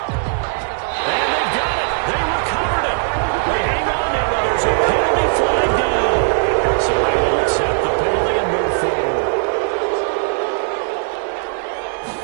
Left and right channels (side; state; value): left; silent; digital silence